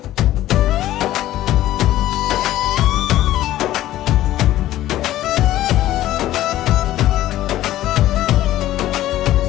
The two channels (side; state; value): right; quieter; 14.2 dB